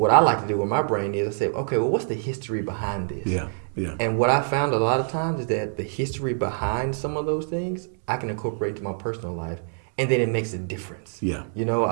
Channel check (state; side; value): silent; left; digital silence